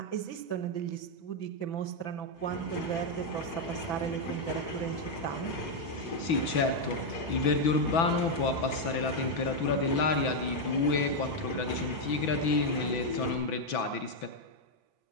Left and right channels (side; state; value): right; late; 6.0 ms